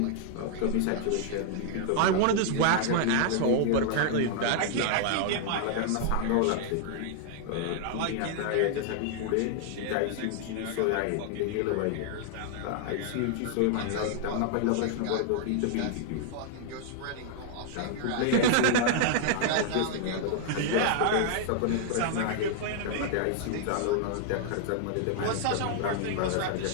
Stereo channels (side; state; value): both; different; correlation 0.00